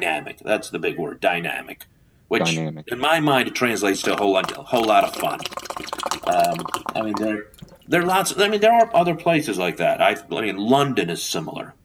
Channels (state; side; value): identical; both; correlation 1.00